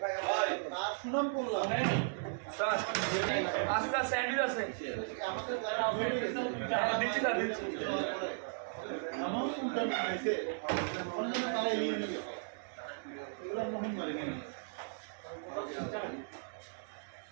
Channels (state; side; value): silent; left; digital silence